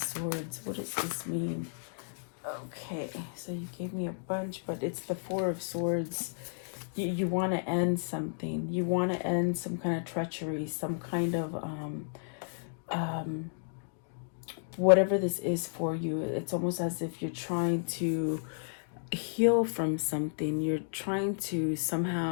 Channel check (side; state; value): right; silent; digital silence